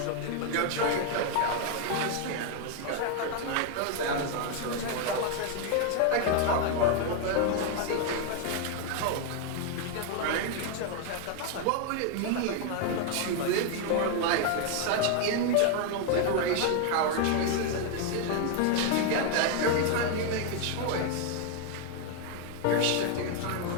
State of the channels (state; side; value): different; both; correlation 0.00